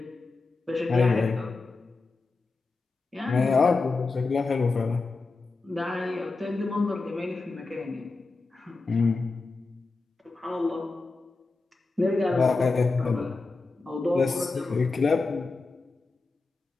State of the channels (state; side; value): quieter; right; 3.8 dB